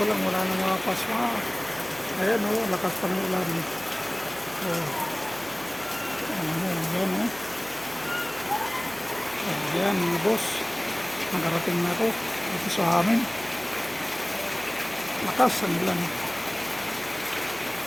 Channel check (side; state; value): right; noise; hum, 22 dB below the sound